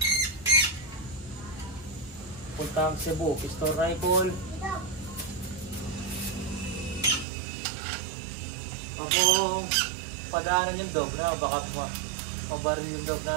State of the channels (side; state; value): left; drops out; at 7.2 s